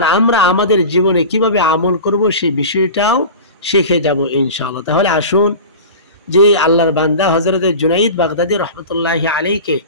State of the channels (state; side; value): inverted; both; correlation -0.33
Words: আমরা আমাদের জীবনে কিভাবে আমল করব সেই বিষয়টাও শিখে যাব ইনশাআল্লাহ। তাহলে আসুন, যে আল্লাহর বান্দা হযরত জুনাইদ বাগদাদী রাহমাতুল্লাহি আলাইহিকে